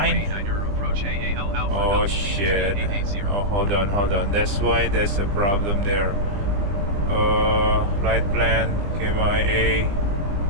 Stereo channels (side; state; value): left; late; 20 ms